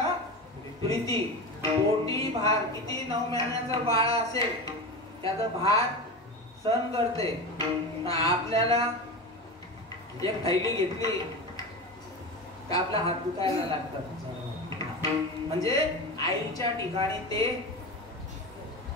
प्रीती. पोटी भार किती 9 महिन्याचं बाळ असेल त्याचा भार सहन करते. आपल्याला एक थैली घेतली का आपला हात दुखायला लागतात. म्हणजे आईच्या ठिकाणी ते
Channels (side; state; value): both; normal; correlation 0.25